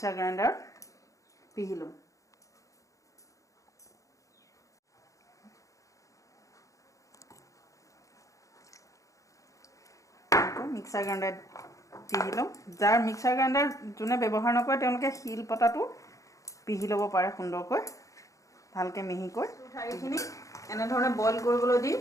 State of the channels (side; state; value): right; late; 0.16 ms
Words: গ্ৰাইণ্ডাৰ পিহি ল'ম। মিক্সাৰ গ্ৰাইণ্ডাৰ পিহি ল'ম। যাৰ মিক্সাৰ গ্ৰাইণ্ডাৰ যোনে ব্যৱহাৰ নকৰে তেওঁলোকে শিল পতাটো পিহি ল'ব পাৰে সুন্দৰকৈ, ভালকৈ মিহিকৈ। ঠাৰিখিনি এনেধৰণে বইল কৰিবলৈ দি,